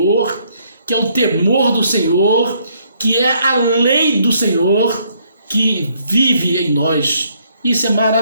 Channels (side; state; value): both; inverted; correlation -0.69